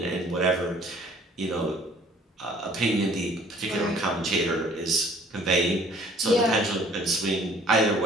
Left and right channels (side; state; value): both; normal; correlation 0.55